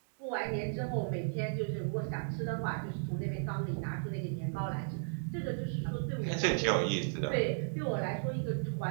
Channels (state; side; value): silent; left; digital silence